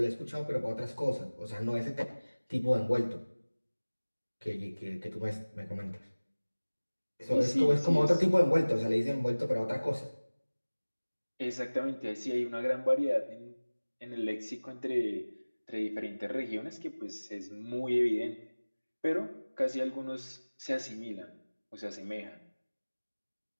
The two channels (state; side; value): inverted; both; correlation -1.00